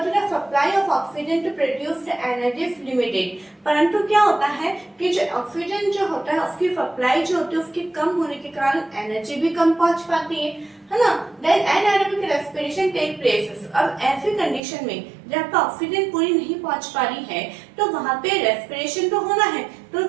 the supply of oxygen to produce the energy is limited. परंतु क्या होता है कि जो ऑक्सीजन जो होता है उसकी सप्लाई जो होती है उसके कम होने के कारण एनर्जी भी कम पहुंच पाती है ना। Then anaerobic respiration take places. अब ऐसी कंडीशन में जब ऑक्सीजन पूरी नहीं पहुंच पा रही है तो वहां पे रेस्पिरेशन तो होना है, तो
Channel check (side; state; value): left; drops out; at 14.6 s